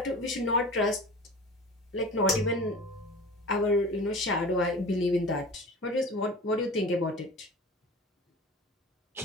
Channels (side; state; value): both; normal; correlation 0.37